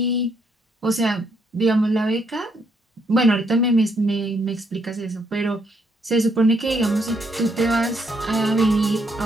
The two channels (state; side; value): normal; both; correlation 0.73